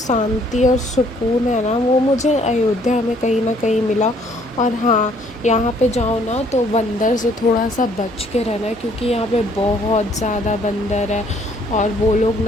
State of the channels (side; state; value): both; normal; correlation 0.63